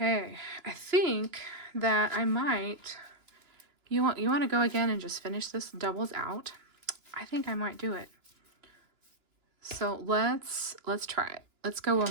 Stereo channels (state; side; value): late; left; 2.9 ms